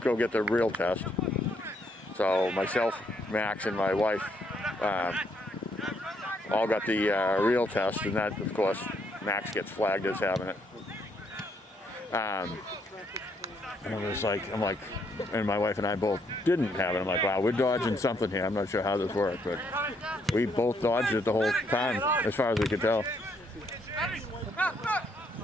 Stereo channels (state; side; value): normal; both; correlation 0.72